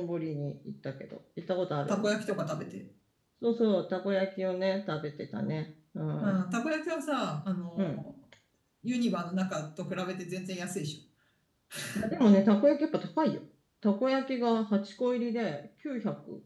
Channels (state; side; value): identical; both; correlation 1.00